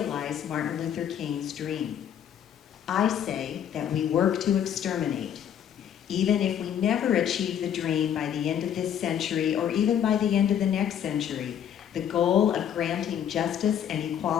Martin Luther King's dream? I say that we work to exterminate. Even if we never achieve the dream by the end of this century or even by the end of the next century, the goal of granting justice and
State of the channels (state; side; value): quieter; right; 9.3 dB